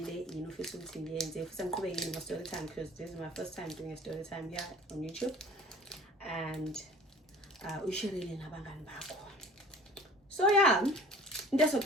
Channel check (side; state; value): both; normal; correlation 0.47